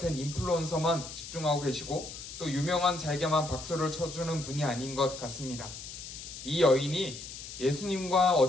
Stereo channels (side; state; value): left; noise; hiss, 11 dB below the sound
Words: 인플루언서만 집중하고 계시고 또 유명한 자에게만 박수를 쳐주는 분이 아닌 것 같습니다. 이 여인이 예수님과